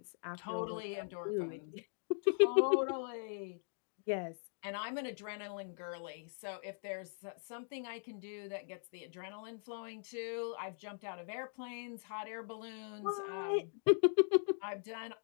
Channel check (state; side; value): silent; right; digital silence